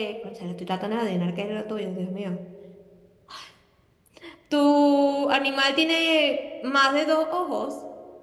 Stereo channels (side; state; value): both; identical; correlation 1.00